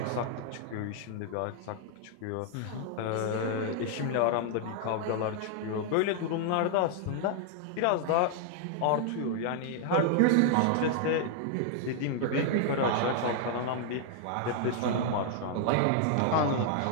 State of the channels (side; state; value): both; different; correlation 0.00